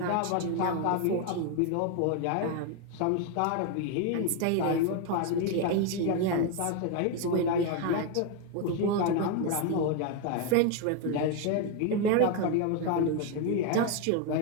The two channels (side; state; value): both; different; correlation 0.01